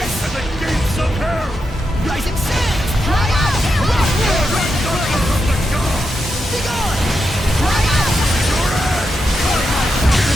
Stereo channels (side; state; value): both; normal; correlation 0.86